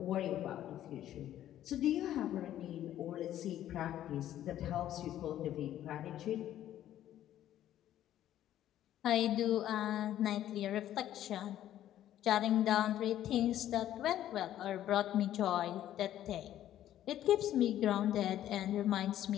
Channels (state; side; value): quieter; right; 12.2 dB